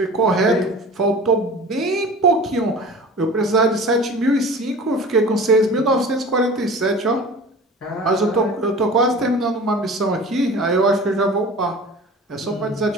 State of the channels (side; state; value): both; normal; correlation 0.39